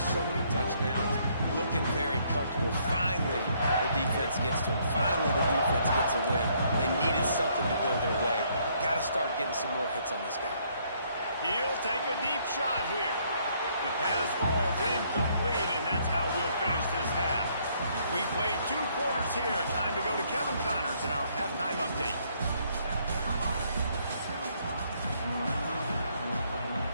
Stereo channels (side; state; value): both; inverted; correlation -0.68